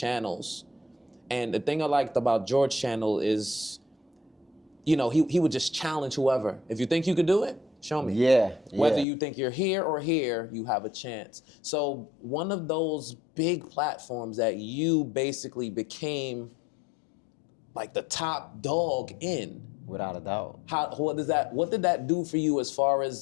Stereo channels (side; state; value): right; drops out; at 9.1 s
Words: and the thing I liked about George's channel is, you know, he would just challenge whoever. If you think you could do it, show me. Yeah. Whether you think you're here or here, you have a chance. So one of those big platforms that you basically became like the top dog in. Without a doubt. What did that do for you as far